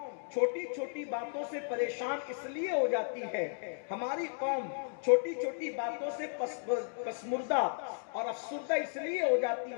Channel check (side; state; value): right; silent; digital silence